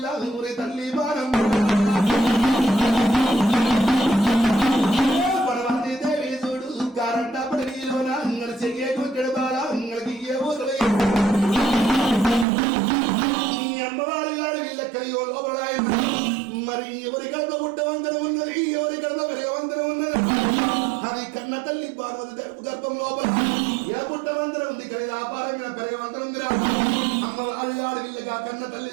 ఊరి తల్లి బాణమ్మ మరి ఎవరి కడత పుట్టవంతరం ఉన్నది ఎవరి కడత పెరగవంతరం ఉన్నది అది కన్న తల్లి పార్వతి తరపు గర్భం లోపల ఏ పుట్టవంతరం ఉంది కానీ వ్యాపారమైన పెరగవంతరం ఉందిరా అమ్మ వాళ్ళ వీళ్ళగా కన్న తల్లి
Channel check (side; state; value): left; drops out; at 12.5 s